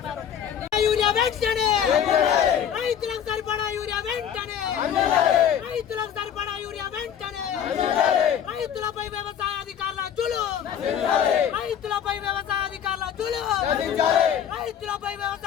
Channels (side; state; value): right; quieter; 9.0 dB